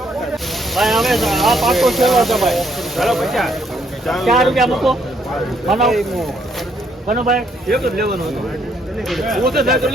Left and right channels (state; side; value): normal; both; correlation 0.70